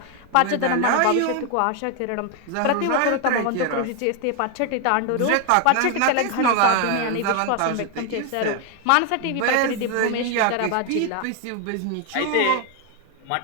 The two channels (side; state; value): both; different; correlation 0.01